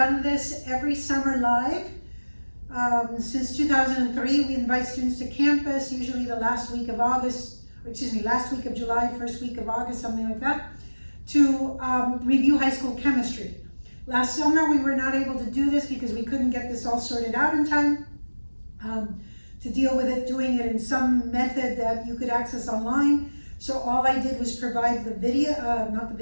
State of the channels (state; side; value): inverted; both; correlation -1.00